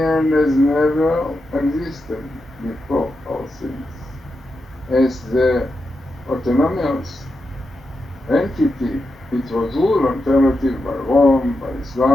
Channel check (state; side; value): normal; both; correlation 0.87